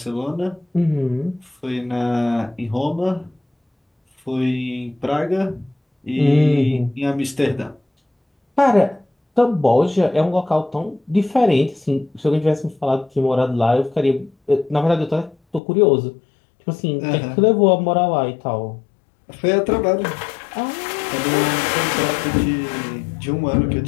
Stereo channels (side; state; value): right; drops out; at 15.6 s